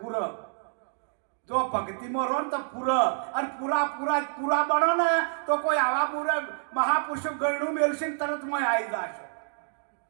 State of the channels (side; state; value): left; silent; digital silence